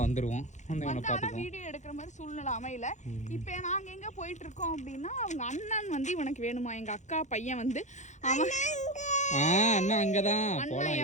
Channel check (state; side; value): late; right; 0.34 ms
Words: வந்துடுவோம். வந்து இவனை பார்த்துக்கோம். வீடியோ எடுக்கிற மாதிரி சூழ்நிலை அமையல. இப்போ நாங்கள் எங்கே போயிட்டு இருக்கோம் அப்படின்னா, அவங்க அண்ணன் வந்து இவனுக்கு வேணுமா, எங்கள் அக்கா பையன் வந்து அவன் அண்ணா அங்கதான். அண்ணா